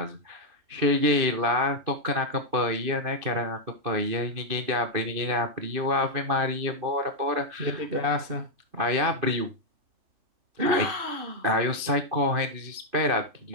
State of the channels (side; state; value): left; late; 2.6 ms